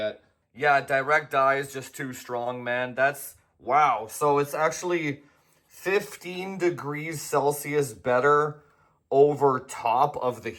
Yeah, direct die is just too strong, man. That's wow. So it's actually 15 degrees Celsius better over top of the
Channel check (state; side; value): identical; both; correlation 1.00